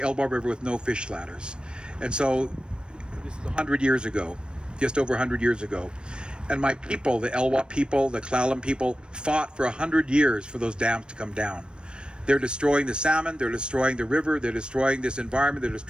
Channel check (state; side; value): late; left; 0.054 ms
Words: Elwha River with no fish ladders. And so this is 100 years ago, just over 100 years ago. And my people, the Elwha people, the Clallam people, fought for 100 years for those dams to come down. They're destroying the salmon, they're destroying the river, they're destroying this environment, they're